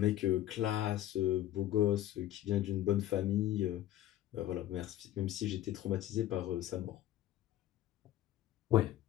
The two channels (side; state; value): right; quieter; 13.0 dB